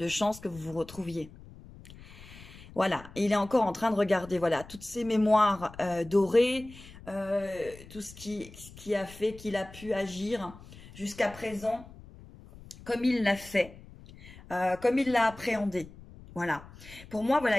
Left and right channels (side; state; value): left; noise; rumble, 19 dB below the sound